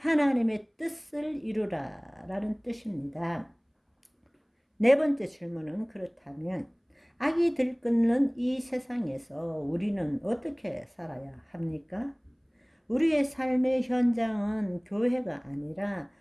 뜻을 이루라 라는 뜻입니다. 네 번째 질문은, 그렇다면 악이 들끓는 이 세상에서 우리는 어떻게 살아야 합니까? 우리의 삶의 현장은 교회가 아니라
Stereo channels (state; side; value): identical; both; correlation 1.00